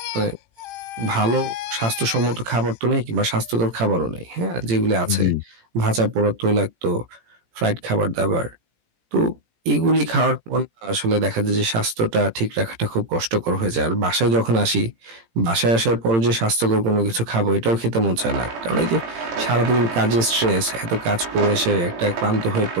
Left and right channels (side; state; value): left; late; 18 ms